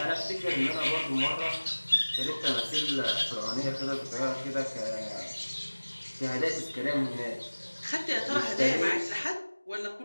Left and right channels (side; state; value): both; inverted; correlation -1.00